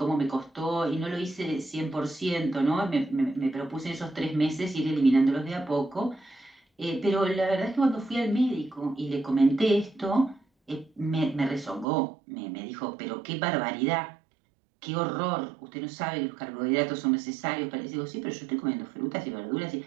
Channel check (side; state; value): left; drops out; at 11.9 s